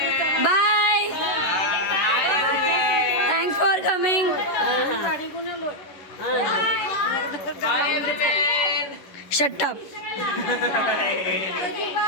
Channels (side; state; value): right; late; 11 ms